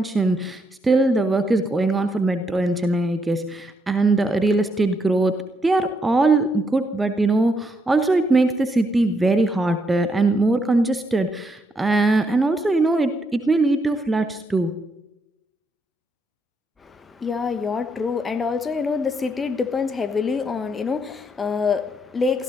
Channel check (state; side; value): normal; both; correlation 0.77